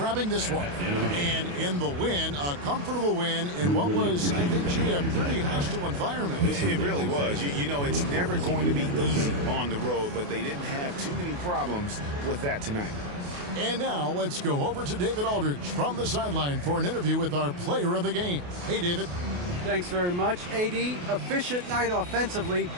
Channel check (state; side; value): late; left; 28 ms